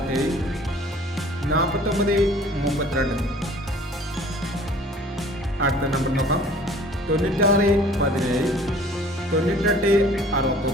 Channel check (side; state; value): both; normal; correlation 0.51